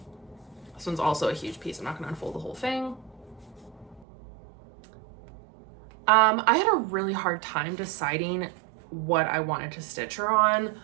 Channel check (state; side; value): drops out; left; at 4.0 s